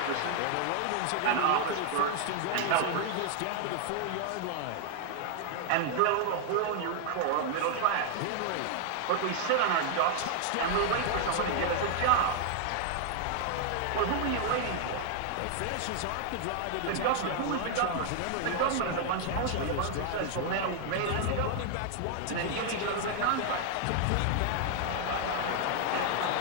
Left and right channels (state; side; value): different; both; correlation 0.00